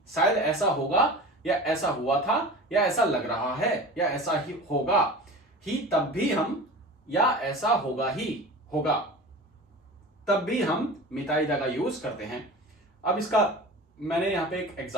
शायद ऐसा होगा या ऐसा हुआ था या ऐसा लग रहा है या ऐसा ही होगा ही, तब भी हम या ऐसा होगा ही होगा, तब भी हम मिताइदा का यूज करते हैं। अब इसका मैंने यहां पे एक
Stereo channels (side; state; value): both; normal; correlation 0.35